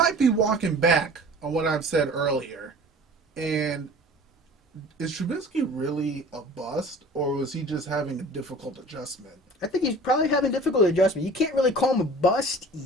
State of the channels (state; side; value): normal; both; correlation 0.44